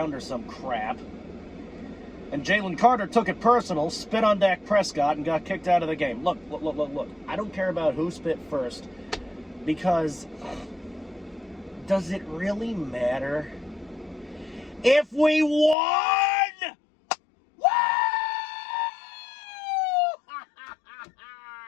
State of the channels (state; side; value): drops out; right; at 15.8 s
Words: or some crap. And Jalen Carter took it personal, spit on Dak Prescott, and got kicked out of the game. Look. I don't care about who spit first, because does it really matter? If we won! Woo!